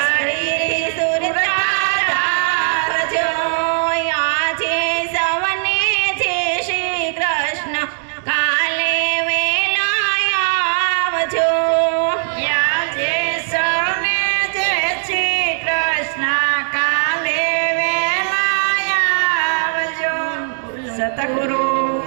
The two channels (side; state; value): left; silent; digital silence